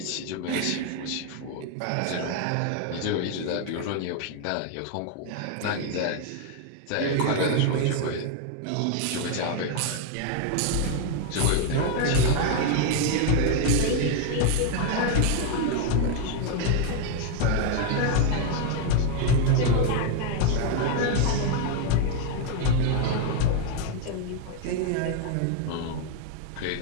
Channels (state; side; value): different; both; correlation 0.00